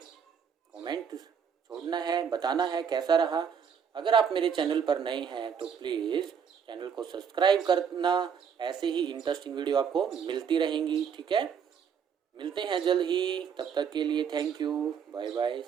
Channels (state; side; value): quieter; left; 7.2 dB